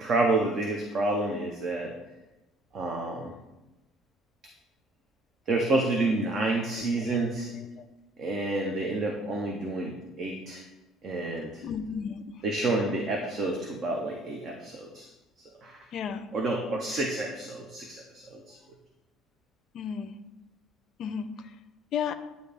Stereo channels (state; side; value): normal; both; correlation 0.58